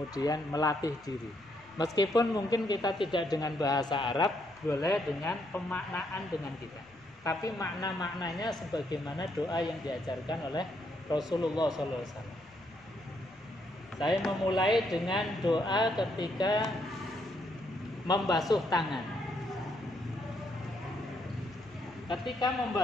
melatih diri. Meskipun mungkin kita tidak dengan bahasa Arab, boleh dengan pemaknaan dengan kita. Tapi makna-maknanya sebagaimana doa yang diajarkan oleh Rasulullah SAW. Saya memulai dengan doa ketika membasuh tangan. Ketika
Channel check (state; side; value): noise; left; rumble, 28 dB below the sound